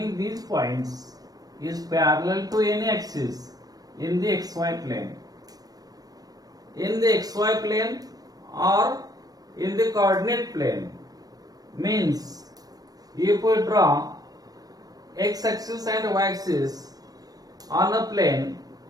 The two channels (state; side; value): late; left; 0.18 ms